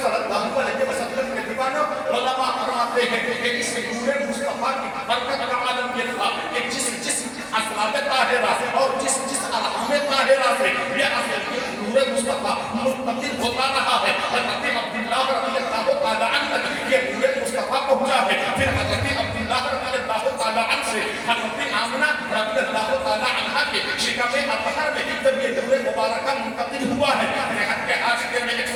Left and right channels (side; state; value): both; identical; correlation 1.00